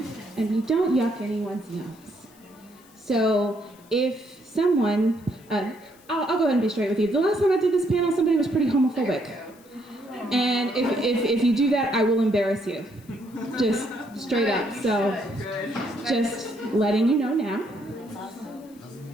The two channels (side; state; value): left; noise; hiss, 28 dB below the sound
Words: and we don't yuck anyone's nose. So if someone, I'll go ahead and be straight with you. The last time I did this panel, somebody was pretty homophobic. And if you do that, I will embarrass you. Just straight up. So just letting you know now.